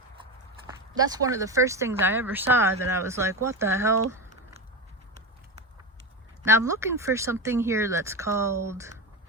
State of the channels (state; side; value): normal; both; correlation 0.18